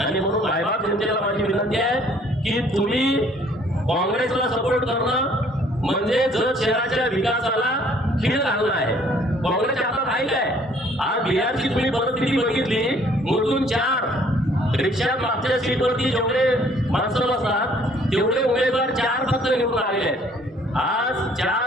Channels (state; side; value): normal; both; correlation 0.59